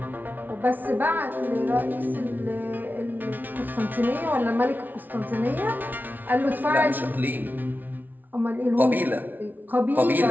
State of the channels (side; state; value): left; late; 0.084 ms